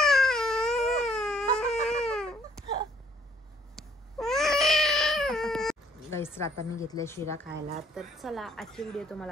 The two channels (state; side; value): normal; both; correlation 0.63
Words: गाईस आता मी घेतल्या शिरा खायला. तर चला आजची व्हिडिओ